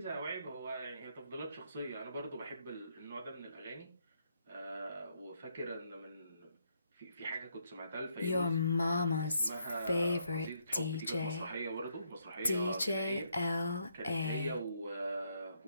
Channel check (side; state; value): both; inverted; correlation -0.75